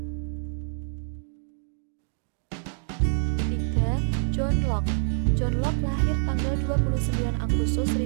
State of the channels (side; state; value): left; silent; digital silence